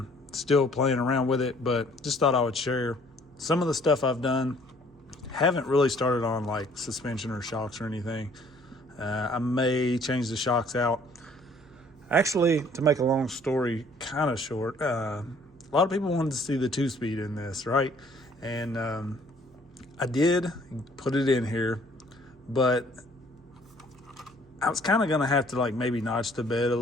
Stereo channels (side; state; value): both; normal; correlation 0.58